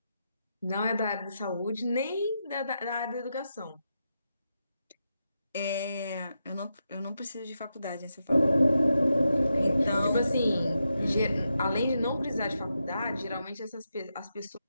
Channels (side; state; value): both; inverted; correlation -0.86